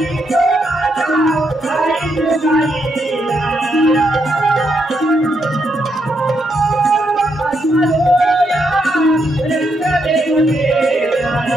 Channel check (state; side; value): normal; both; correlation 0.79